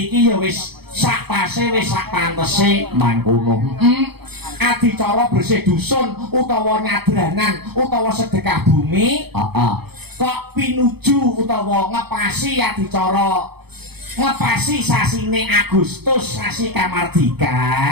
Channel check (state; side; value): late; left; 0.97 ms